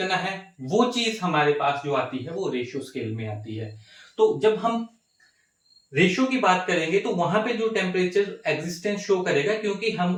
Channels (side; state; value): both; identical; correlation 1.00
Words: है वो चीज हमारे पास जो आती है वो रेशियो स्केल में आती है। तो जब हम रेशियो की बात करेंगे तो वहां पे जो टेम्परेचर एग्जिस्टेंस शो करेगा, क्योंकि हम